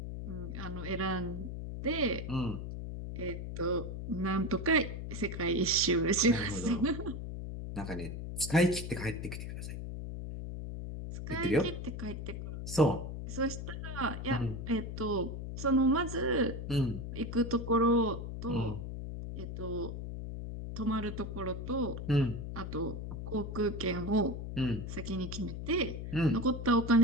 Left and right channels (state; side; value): noise; left; hum, 6 dB below the sound